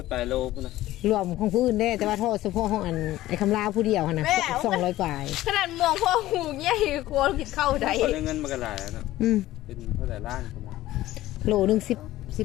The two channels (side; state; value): right; quieter; 15.6 dB